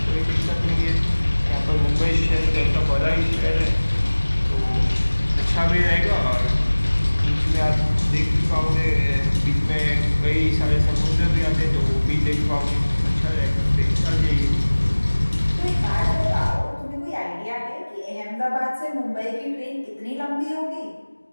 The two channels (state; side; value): inverted; both; correlation -1.00